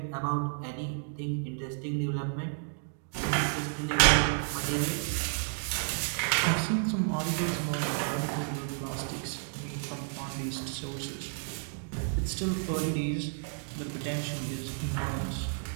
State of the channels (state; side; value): silent; left; 57 dB below the other